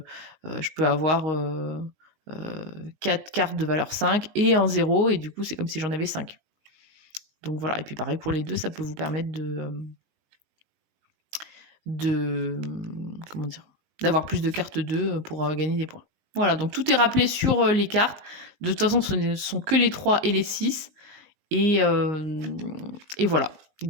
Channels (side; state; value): left; late; 19 ms